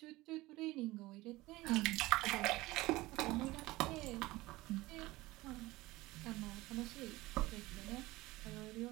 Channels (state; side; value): quieter; left; 19.5 dB